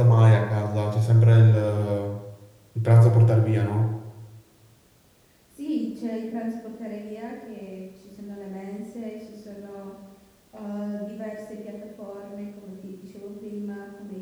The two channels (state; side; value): identical; both; correlation 1.00